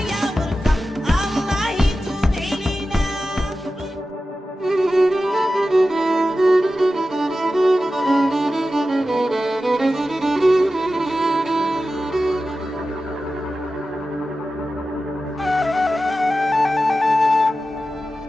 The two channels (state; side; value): normal; both; correlation 0.93